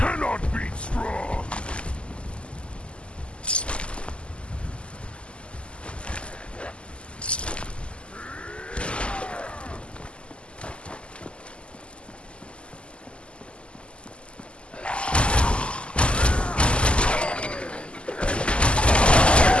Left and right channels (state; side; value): late; right; 0.053 ms